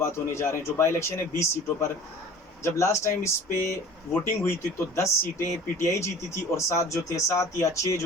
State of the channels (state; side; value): normal; both; correlation 0.45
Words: होने जा रहे हैं, जो बाई इलेक्शन है 20 सीटों पर। जब लास्ट टाइम इस पे वोटिंग हुई थी तो 10 सीटें पीटीआई जीती थी और 7 या 6